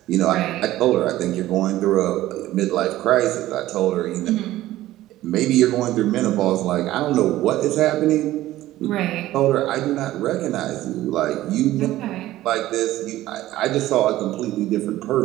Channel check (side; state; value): left; quieter; 15.3 dB